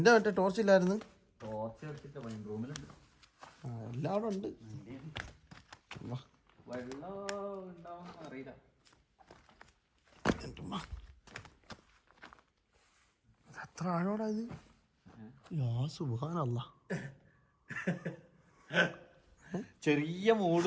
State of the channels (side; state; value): both; identical; correlation 1.00